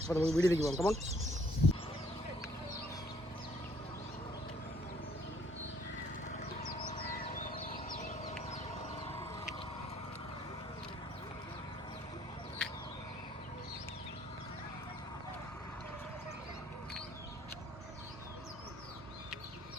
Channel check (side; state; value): both; normal; correlation 0.63